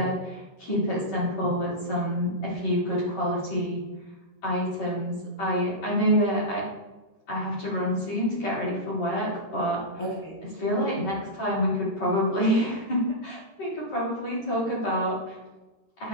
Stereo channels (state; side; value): late; right; 13 ms